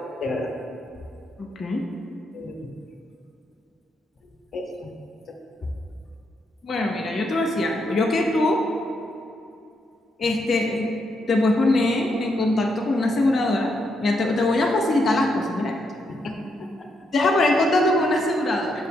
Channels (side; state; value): both; normal; correlation 0.79